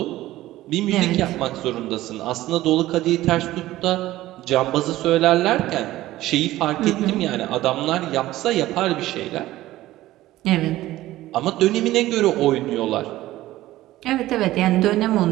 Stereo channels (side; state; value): left; quieter; 15.9 dB